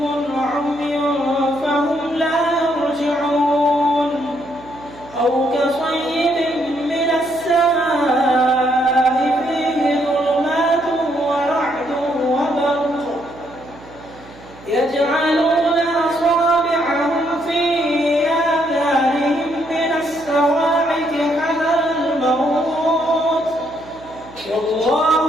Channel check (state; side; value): noise; right; hum, 21 dB below the sound